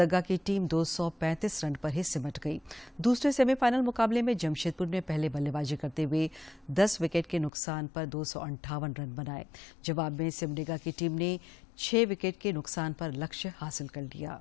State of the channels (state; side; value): drops out; right; at 7.5 s